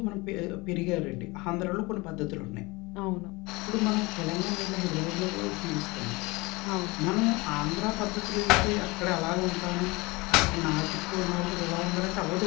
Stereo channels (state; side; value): quieter; right; 24.0 dB